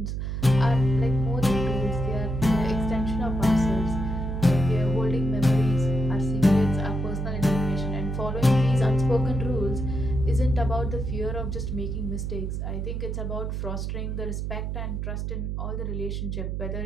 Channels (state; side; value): noise; right; hum, 3 dB below the sound